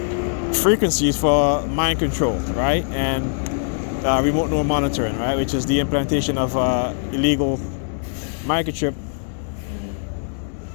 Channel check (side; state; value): right; silent; 64 dB below the other